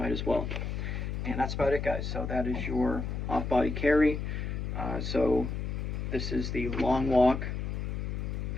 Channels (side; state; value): left; noise; hum, 3 dB below the sound